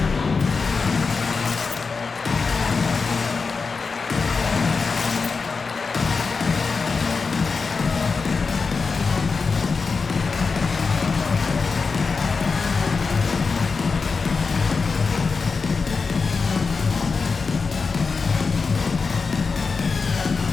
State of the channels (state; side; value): quieter; right; 4.7 dB